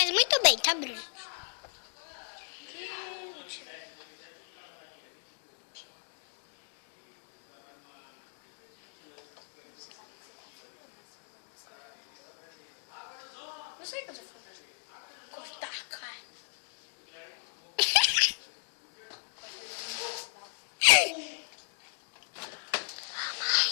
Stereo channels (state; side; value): silent; right; digital silence